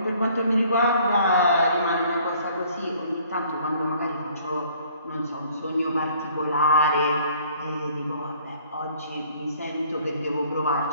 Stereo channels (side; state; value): both; inverted; correlation -0.58